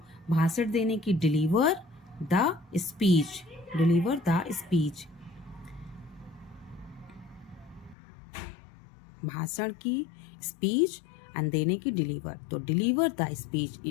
भाषण देने की डिलीवर द स्पीच, भाषण की स्पीच एंड देने की डिलीवर, तो डिलीवर द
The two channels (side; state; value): right; drops out; at 8.0 s